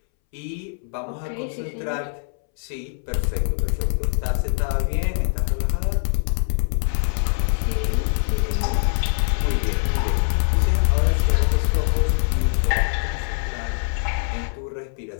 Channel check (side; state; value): right; silent; 64 dB below the other